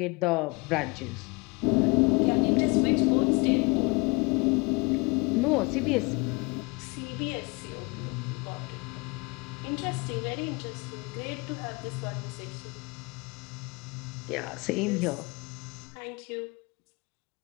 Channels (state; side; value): quieter; right; 27.7 dB